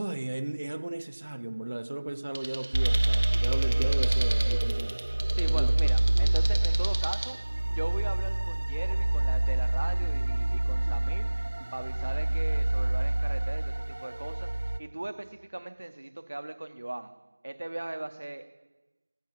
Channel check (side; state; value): both; inverted; correlation -1.00